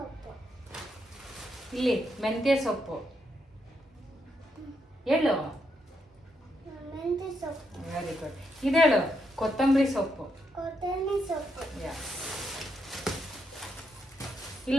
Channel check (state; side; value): normal; both; correlation 0.79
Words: ಇಲ್ಲಿ ಮೆಂತ್ಯ ಸೊಪ್ಪು. ಹೇಳು. Very good. ಇದೇಳು ಕೊತ್ತಂಬರಿ ಸೊಪ್ಪು.